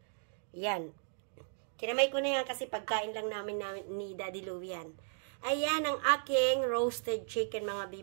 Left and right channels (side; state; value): left; silent; digital silence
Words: yan. Kinamay ko na yan kasi pagkain lang namin ni Daddy Louie yan. Ayan ang aking roasted chicken mga